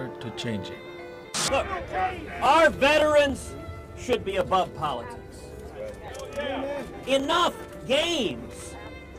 to change it. Look, our veterans should be above politics. Enough games.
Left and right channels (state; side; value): identical; both; correlation 1.00